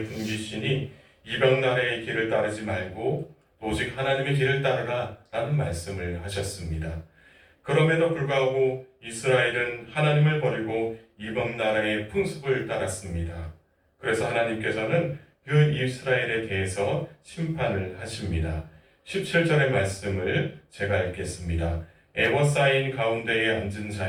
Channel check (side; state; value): both; identical; correlation 1.00